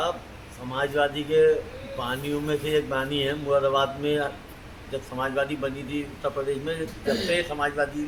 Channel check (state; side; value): identical; both; correlation 1.00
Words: समाजवादी के बानियों में से एक बानी है। मुरादाबाद में जब समाजवादी बनी थी उत्तर प्रदेश में, जब से समाजवादी